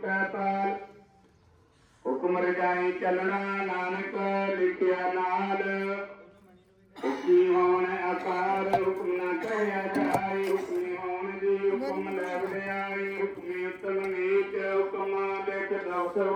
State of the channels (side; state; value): both; identical; correlation 1.00